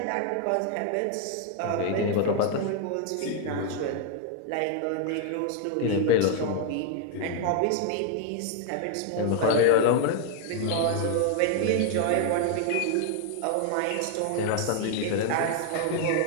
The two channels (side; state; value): both; different; correlation 0.00